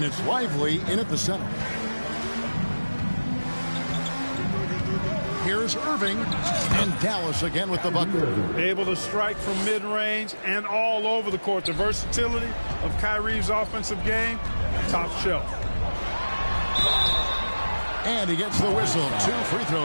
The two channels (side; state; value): both; inverted; correlation -1.00